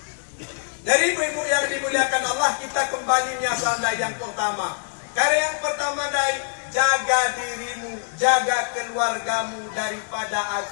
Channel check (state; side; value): silent; right; digital silence